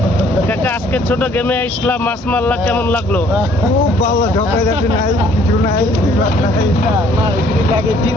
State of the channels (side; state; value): both; normal; correlation 0.60